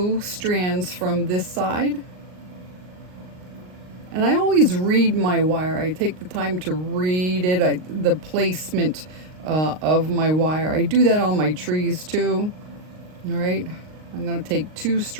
strands from this side. And I always read my wire. I take the time to read it, the placement of my wire. I do that on my trees too. All right. I'm going to take 2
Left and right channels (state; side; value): late; left; 38 ms